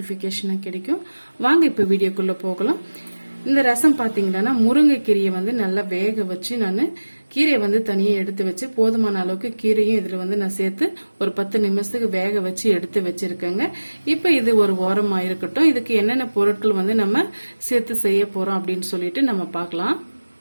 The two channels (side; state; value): both; inverted; correlation -1.00